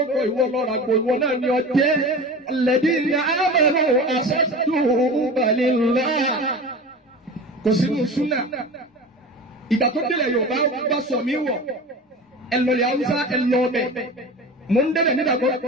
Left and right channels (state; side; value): normal; both; correlation 0.33